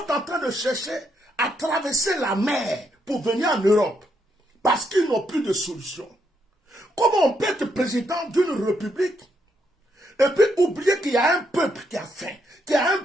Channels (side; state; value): both; normal; correlation 0.77